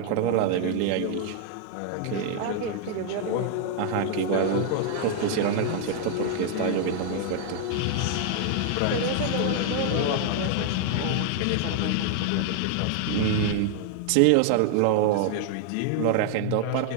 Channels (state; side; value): different; both; correlation 0.00